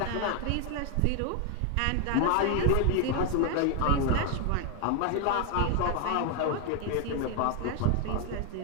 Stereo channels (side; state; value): both; different; correlation 0.00